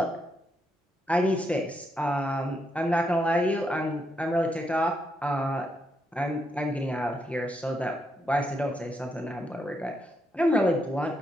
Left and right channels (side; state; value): both; normal; correlation 0.80